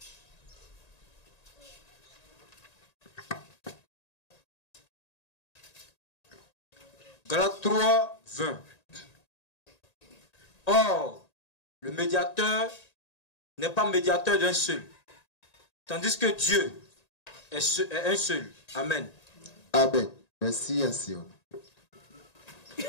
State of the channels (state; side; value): late; right; 1.9 ms